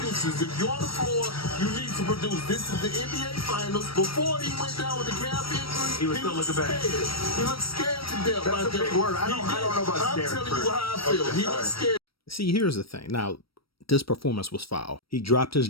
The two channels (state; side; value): late; right; 0.75 ms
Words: If you're on the floor, you need to produce. This is the NBA Finals. Before he went down with the calf injury, he was still looking bad. He looked scared to death. That's a big word. I don't know about scared. I'm telling you how I feel. He looked scared. See, here's the thing. Now, this performance was foul. He dropped his